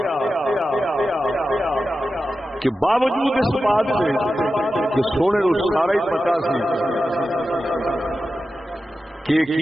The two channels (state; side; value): normal; both; correlation 0.92